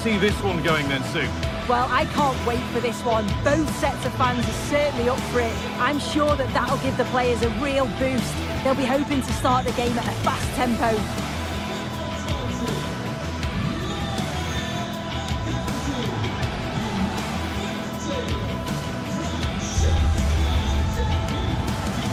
this one going then, Sue? Well, I can't wait for this one. Both sets of fans are certainly up for it. I'm sure that that'll give the players a real boost. They'll be hoping to start the game at a fast tempo.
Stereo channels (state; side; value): identical; both; correlation 1.00